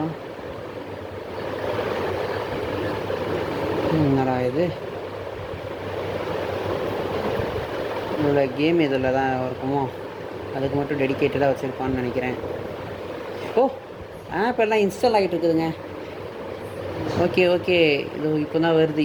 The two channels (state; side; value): identical; both; correlation 1.00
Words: என்னடா இது? இதில் கேம் இதில் தான் இருக்குமோ? அதுக்கு மட்டும் டெடிக்கேட்டடாக வச்சுருப்பான்னு நினைக்கிறேன். ஓ, ஆப் எல்லாம் இன்ஸ்டால் ஆகிட்டு இருக்குதுங்க. ஓகே, இது இப்போ தான் வருது.